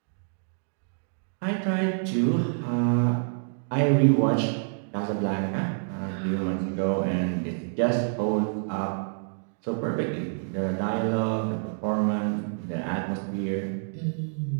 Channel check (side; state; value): left; silent; digital silence